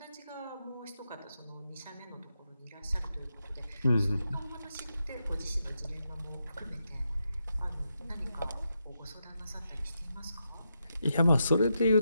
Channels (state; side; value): inverted; both; correlation -0.84